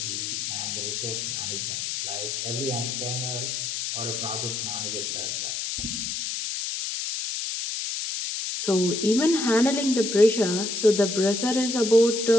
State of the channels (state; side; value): noise; left; hiss, 3 dB below the sound